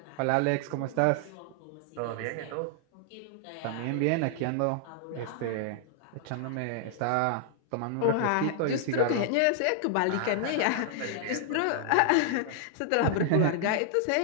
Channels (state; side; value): different; both; correlation -0.01